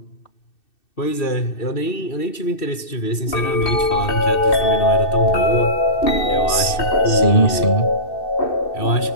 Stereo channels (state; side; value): late; right; 2.6 ms